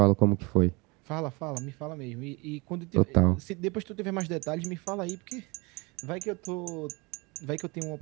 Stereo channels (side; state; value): left; quieter; 27.1 dB